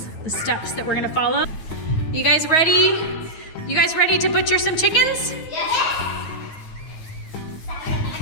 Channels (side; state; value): right; late; 9.4 ms